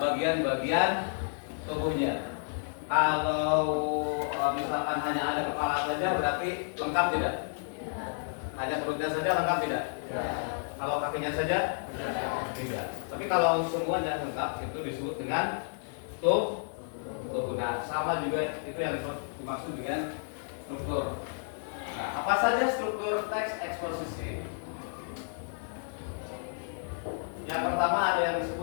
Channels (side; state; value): right; silent; 57 dB below the other